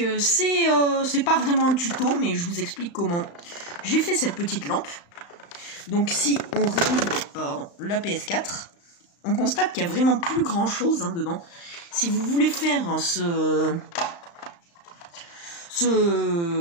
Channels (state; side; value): late; right; 35 ms